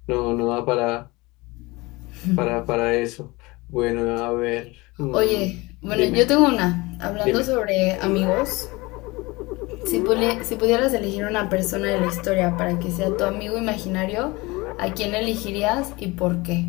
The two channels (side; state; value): right; quieter; 23.1 dB